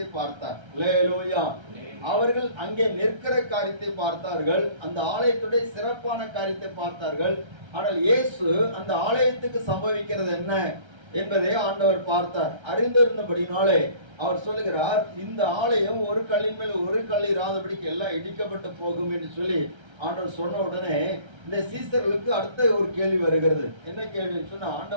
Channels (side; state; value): left; late; 1.3 ms